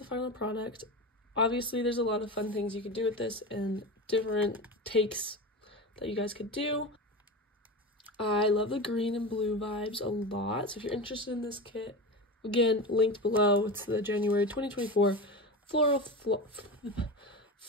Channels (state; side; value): normal; both; correlation 0.25